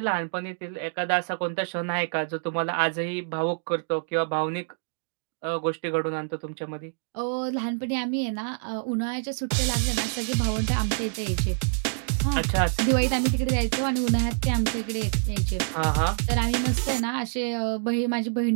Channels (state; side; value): silent; left; digital silence